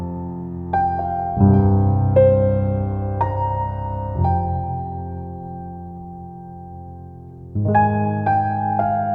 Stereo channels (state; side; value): identical; both; correlation 1.00